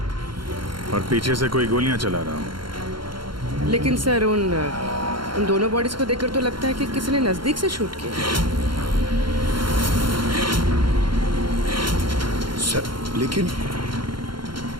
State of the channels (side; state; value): left; late; 0.73 ms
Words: और पीछे से कोई गोलियां चला रहा हो। लेकिन सर उन दोनों बॉडीज को देखकर तो लगता है कि किसी ने नजदीक से शूट किया। सर, लेकिन